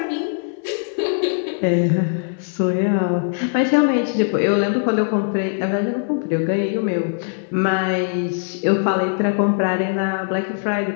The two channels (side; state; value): right; silent; digital silence